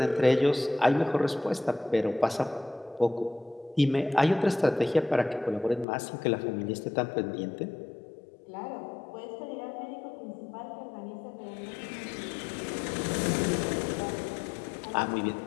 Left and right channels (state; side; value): drops out; right; at 5.9 s